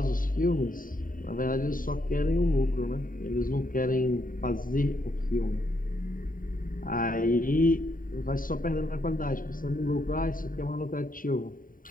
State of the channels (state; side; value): late; right; 0.40 ms